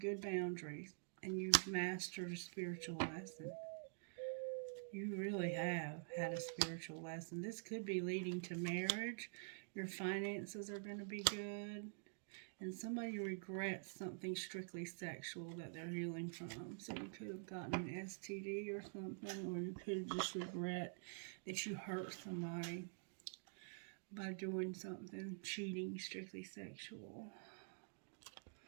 boundaries, and you've mastered a spiritual lesson. You really have had a spiritual lesson. This could be leading to marriage. Your finances are going to be good. And somebody regrets something strictly sexual that they're healing from. So you could have gotten an STD or something, or you could just regret that you hurt somebody by doing something, cheating, strictly sexual.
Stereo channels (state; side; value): silent; left; digital silence